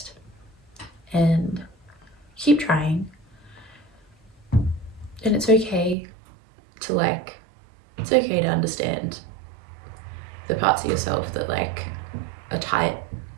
and keep trying. And it's okay to like, it's okay to understand the parts of yourself that like are tight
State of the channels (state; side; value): drops out; left; at 6.0 s